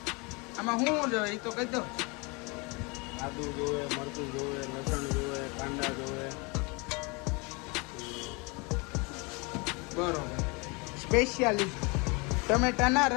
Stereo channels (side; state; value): right; quieter; 29.0 dB